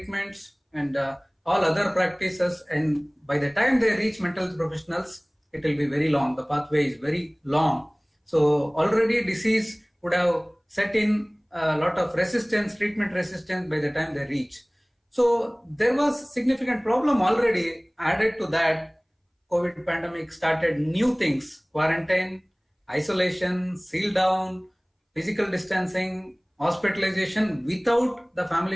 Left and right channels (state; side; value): identical; both; correlation 1.00